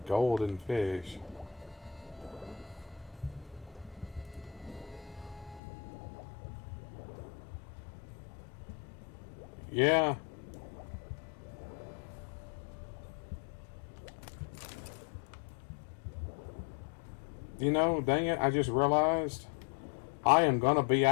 golden fish. Yeah. You know, dang it, I just realized I am gonna be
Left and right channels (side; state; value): right; drops out; at 5.6 s